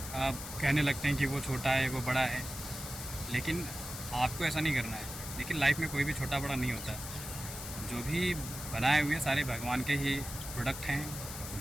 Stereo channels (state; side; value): noise; left; hiss, 9 dB below the sound